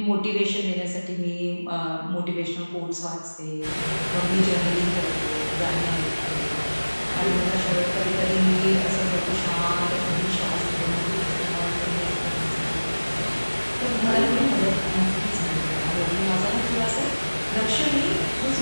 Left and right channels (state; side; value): inverted; both; correlation -1.00